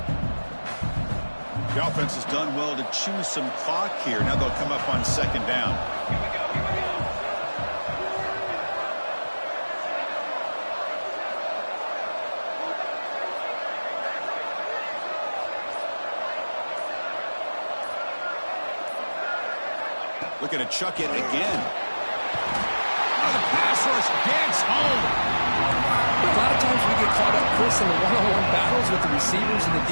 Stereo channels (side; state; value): both; inverted; correlation -1.00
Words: The offense has done well to choose some clock here. Now they'll come up on second down. Looking to chuck it again. Oh, the pass rush gets home. A lot of times we get caught up, Chris, in the one-on-one battles with the receivers and the